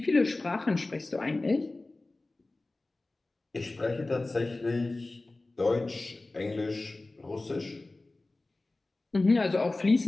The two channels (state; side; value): quieter; right; 3.1 dB